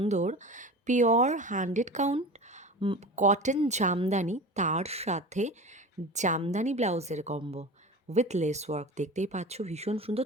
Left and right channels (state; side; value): normal; both; correlation 0.32